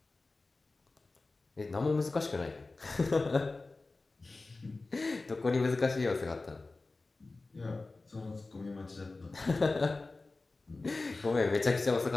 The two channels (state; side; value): quieter; right; 3.4 dB